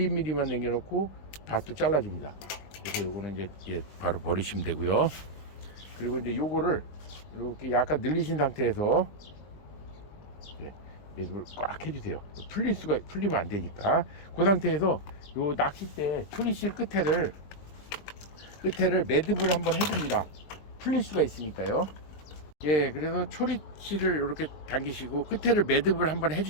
남겨놓고 밧도 잘라줍니다. 그래서 요거는 이제 바로 버리시면 되고요. 그리고 이제 요거를 이렇게 약간 늘리신 상태에서 매듭을 꽉 해주세요. 풀리면 안 되니까. 그 상태에서 요 낚싯대 초리실 끝에를 매듭을 한번 해줍니다. 풀릴 수가 있으니까요. 그래서 초리실을 이렇게 당기시고 끝에를 매듭을 한번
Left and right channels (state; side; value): late; right; 20 ms